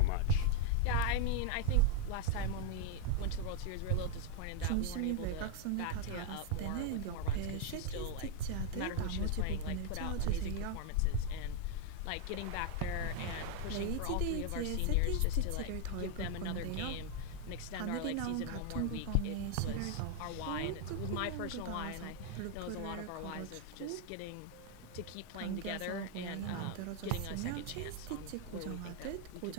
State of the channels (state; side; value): different; both; correlation 0.01